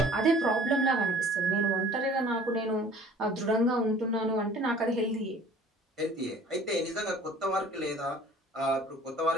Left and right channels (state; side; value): normal; both; correlation 0.50